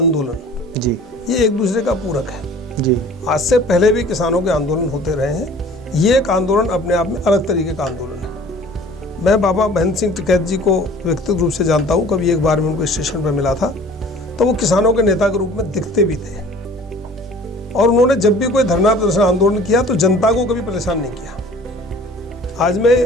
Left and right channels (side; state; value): both; normal; correlation 0.48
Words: जी ये एक दूसरे का पूरक है जी। आज से पहले भी किसानों के आंदोलन होते रहे हैं, ये एक आंदोलन अपने आप में अलग तरीके का आंदोलन है। मैं बाबा महेंद्र सिंह टिकैत जी को व्यक्तिगत रूप से जानता हूँ, कभी एक बार मैं उनको स्टेशन पर मिला था, तो वो किसानों के नेता के रूप में दिखते भी थे, और उन्होंने जब भी कोई धरना प्रदर्शन आंदोलन किया तो जनता को कभी परेशान नहीं किया। आज मैं